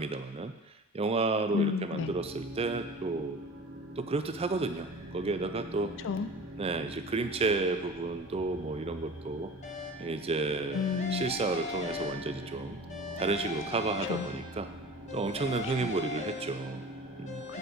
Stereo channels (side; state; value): both; normal; correlation 0.38